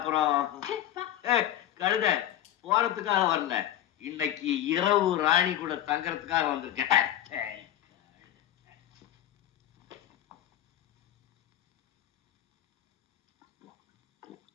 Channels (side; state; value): right; quieter; 12.2 dB